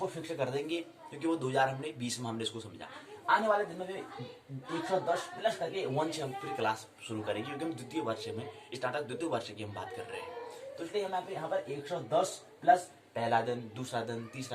फिक्स कर देंगे, क्योंकि वो 2020 में हमने इसको समझा। आने वाले दिन में 110 प्लस करके 1 से हम फिर क्लास शुरू करेंगे, क्योंकि हम द्वितीय वर्ष में, स्नातक द्वितीय वर्ष की हम बात कर रहे हैं। तो इसलिए हम यहाँ पर 110 प्लस पहला दिन, दूसरा दिन,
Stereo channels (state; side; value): identical; both; correlation 1.00